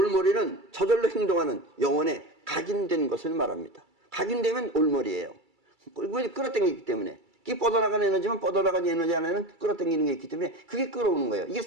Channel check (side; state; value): left; late; 2.3 ms